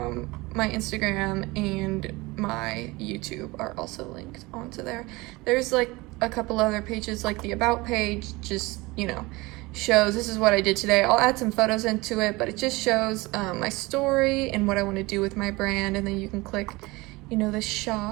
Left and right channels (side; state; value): left; quieter; 22.6 dB